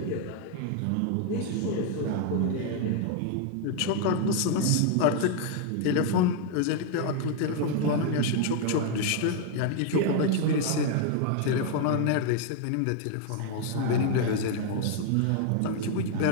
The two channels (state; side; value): different; both; correlation 0.00